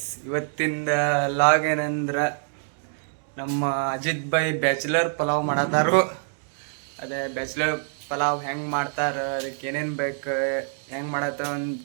ಇವತ್ತಿಂದ log ಏನಂದ್ರೆ ನಮ್ಮ ಅಜಿತ್ ಭಾಯ್ ಬ್ಯಾಚುಲರ್ ಪಲಾವ್ ಮಾಡತ್ತಾರು. ಅದೇ ಬ್ಯಾಚುಲರ್ ಪಲಾವ್ ಹೆಂಗೆ ಮಾಡ್ತಾರೆ, ಅದಕ್ಕೆ ಏನೇನು ಬೇಕು, ಹೆಂಗೆ ಮಾಡತ್ತ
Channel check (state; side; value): silent; left; digital silence